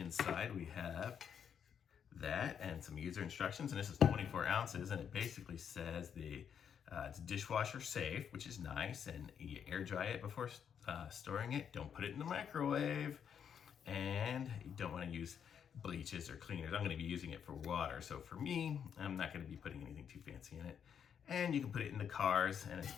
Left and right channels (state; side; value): quieter; right; 7.9 dB